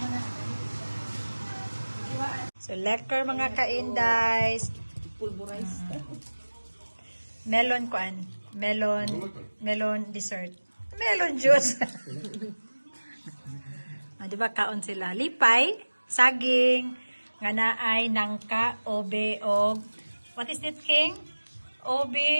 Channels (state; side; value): inverted; both; correlation -1.00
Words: So, lekker mga kaindays. Pulverize. Melon kuan. Melon dessert. Melon juice. Di ba kaon sila? Lipay, saging, nga naay nangka, obe, og what is it, King?